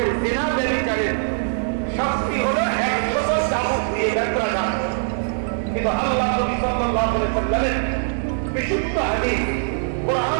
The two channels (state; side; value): silent; left; digital silence